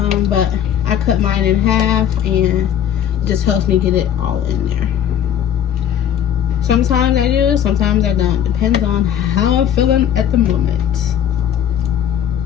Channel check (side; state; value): right; quieter; 9.7 dB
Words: but I cut mine in half and it just helps me get it all in there. Sometimes I do, sometimes I don't. Depends on how I'm feeling at the moment.